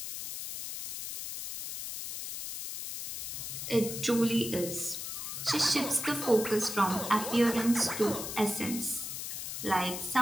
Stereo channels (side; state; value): left; noise; hiss, 6 dB below the sound